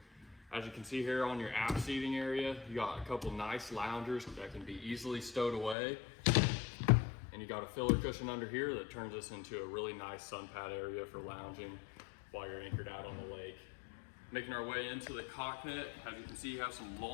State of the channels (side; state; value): right; drops out; at 5.8 s